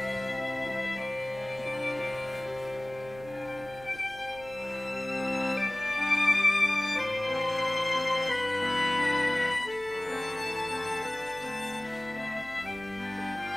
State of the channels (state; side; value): noise; right; hum, 19 dB below the sound